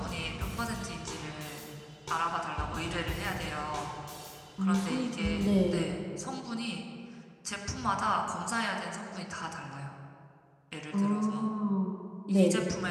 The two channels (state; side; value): identical; both; correlation 1.00